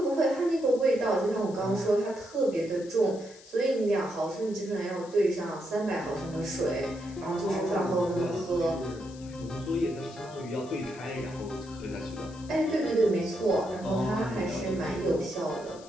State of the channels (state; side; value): noise; left; hiss, 21 dB below the sound